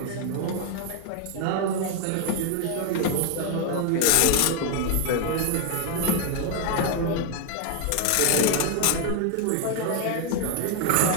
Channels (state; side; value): different; both; correlation 0.01